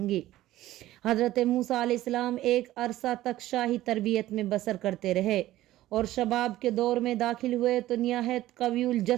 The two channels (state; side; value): quieter; left; 15.1 dB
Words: گی۔ حضرت موسیٰ علیہ السلام ایک عرصہ تک شاہی تربیت میں بسر کرتے رہے اور شباب کے دور میں داخل ہوئے تو نہایت قوی